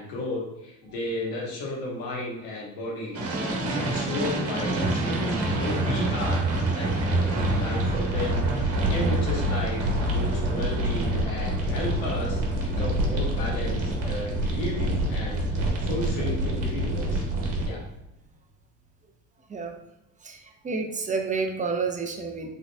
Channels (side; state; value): both; normal; correlation 0.36